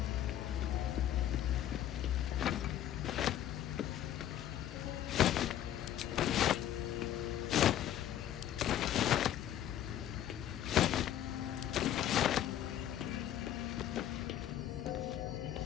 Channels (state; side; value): quieter; right; 11.4 dB